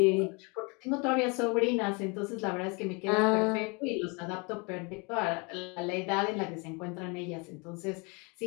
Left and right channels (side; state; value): right; quieter; 30.5 dB